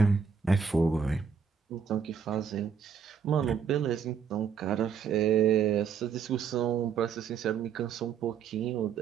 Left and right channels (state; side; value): quieter; left; 6.8 dB